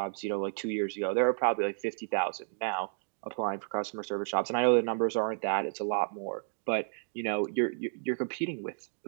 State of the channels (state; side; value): silent; left; digital silence